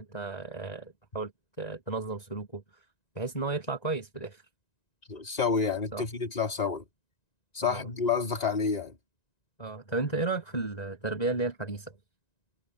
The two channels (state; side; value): late; right; 1.9 ms